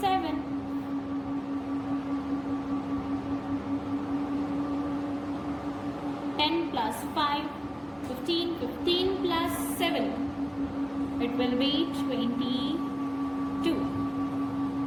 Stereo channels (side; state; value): both; identical; correlation 1.00